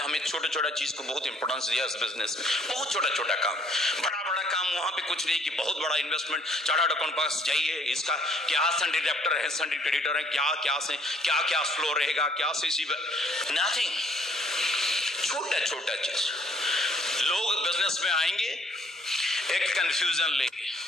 छोटा छोटा चीज को बहुत इंपॉर्टेंस दिया इस बिजनेस में. बहुत छोटा छोटा काम, बड़ा बड़ा काम वहां पे कुछ नहीं कि बहुत बड़ा इन्वेस्टमेंट. चार्टर्ड अकाउंट पास जाइए, इसका क्या सन्डी डेप्टर है, सन्डी क्रेडिटर है, क्या क्या से क्या क्या फ्लो रहेगा, क्या से नथिंग. छोटा छोटा चीज. लोग बिजनेस में आएंगे एक कंफ्यूजन लेके,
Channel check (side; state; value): both; normal; correlation 0.63